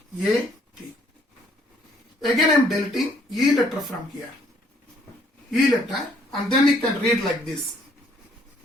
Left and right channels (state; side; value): normal; both; correlation 0.65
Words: Again I am deleting E letter from here. E letter, and then you can read like this.